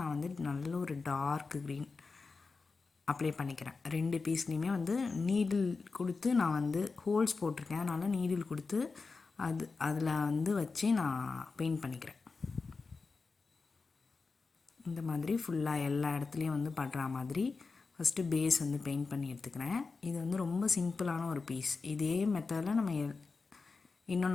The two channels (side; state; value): right; quieter; 4.3 dB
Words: வந்து நல்ல ஒரு டார்க் க்ரீன் அப்ளை பண்ணிக்கிறேன். 2 பீஸ்லேயுமே வந்து நீடில் கொடுத்து நான் வந்து ஹோல்ஸ் போட்டிருக்கேன். அதனால் நீடில் கொடுத்து அதில் வந்து வச்சு நான் பெயிண்ட் பண்ணிக்கிறேன். இந்த மாதிரி ஃபுல்லாக எல்லா இடத்துலையும் வந்து பண்ணுற மாதிரி ஃபஸ்ட்டு பேஸ் வந்து பெயிண்ட் பண்ணி எடுத்துக்கிறேன். இது வந்து ரொம்ப சிம்பிளான ஒரு பீஸ். இதே மெத்தடில் நம்ம